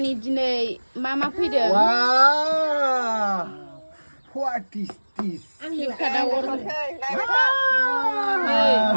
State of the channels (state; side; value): inverted; both; correlation -1.00